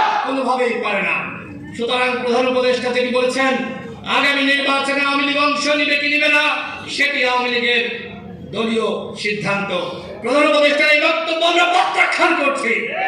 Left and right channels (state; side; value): identical; both; correlation 1.00